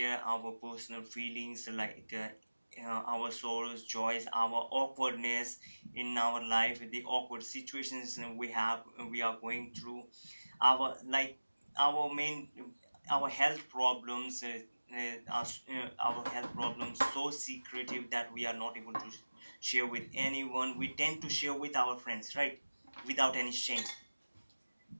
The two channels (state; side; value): inverted; both; correlation -1.00